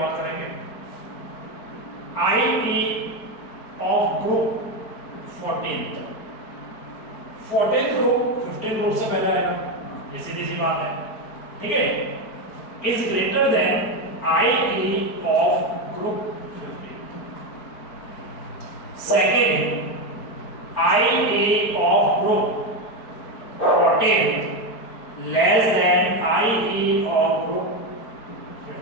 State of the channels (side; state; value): right; late; 4.4 ms